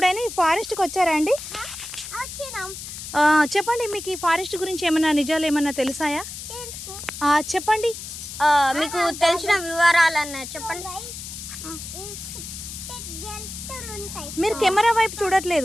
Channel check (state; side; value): noise; left; hiss, 10 dB below the sound